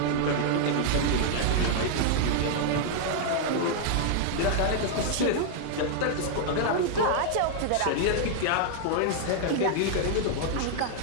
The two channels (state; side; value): different; both; correlation -0.01